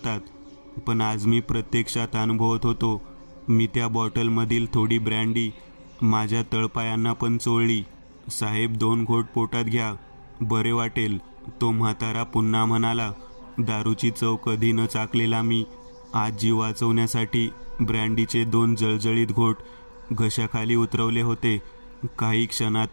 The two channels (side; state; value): both; inverted; correlation -1.00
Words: पण आज मी प्रत्यक्षात अनुभवत होतो. मी त्या बॉटलमधील थोडी ब्रँडी माझ्या तळपायांना पण चोळली. साहेब, 2 घोट पोटात घ्या, बरे वाटेल, तो म्हातारा पुन्हा म्हणाला. दारूची चव कधी न चाकलेला मी आज जीव वाचवण्यासाठी ब्रँडीचे 2 जळजळीत घोट घशाखाली उतरवले होते. काही